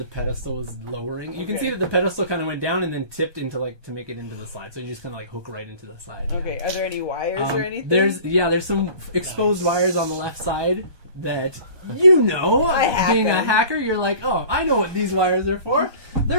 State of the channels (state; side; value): late; left; 1.2 ms